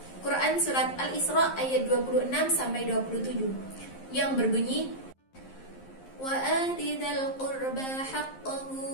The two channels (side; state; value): right; late; 11 ms